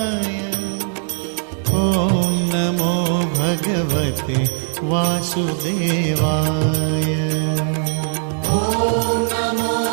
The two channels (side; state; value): left; silent; 66 dB below the other